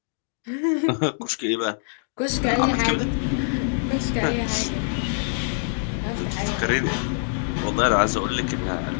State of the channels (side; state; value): right; silent; digital silence